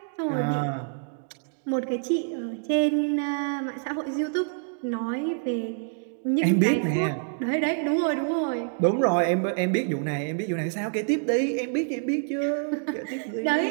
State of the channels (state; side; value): silent; left; digital silence